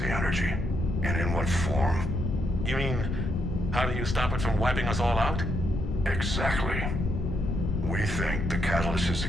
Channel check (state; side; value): noise; left; rumble, 2 dB below the sound